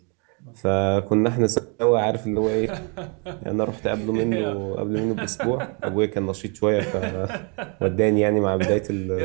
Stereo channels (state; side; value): quieter; left; 34.8 dB